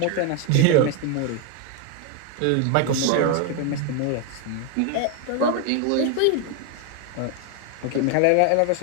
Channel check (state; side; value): different; both; correlation 0.01